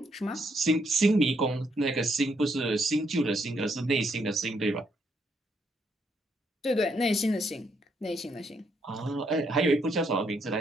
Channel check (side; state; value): both; normal; correlation 0.74